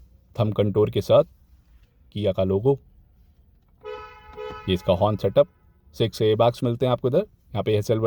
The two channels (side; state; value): both; identical; correlation 1.00